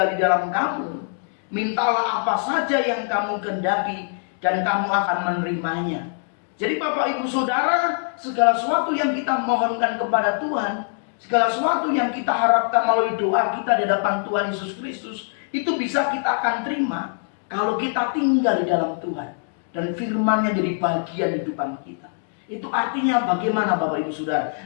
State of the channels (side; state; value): right; silent; digital silence